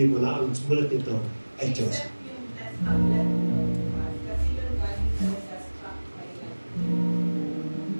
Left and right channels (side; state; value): both; inverted; correlation -1.00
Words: mo na ang sulat nito ay Diyos.